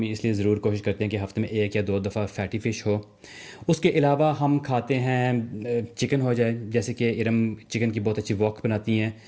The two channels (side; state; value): both; identical; correlation 1.00